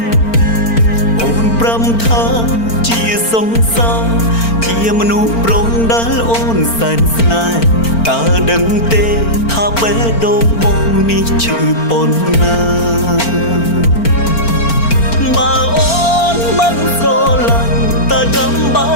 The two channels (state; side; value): late; right; 4.4 ms